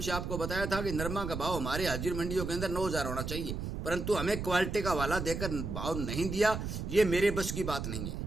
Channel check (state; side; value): noise; right; rumble, 4 dB below the sound